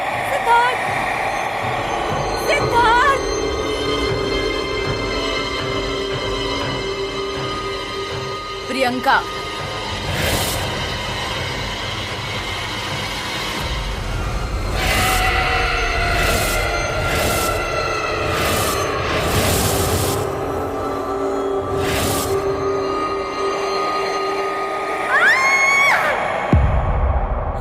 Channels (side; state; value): both; identical; correlation 1.00